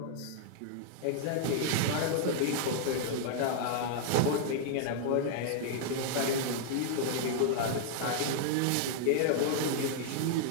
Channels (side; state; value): both; different; correlation -0.01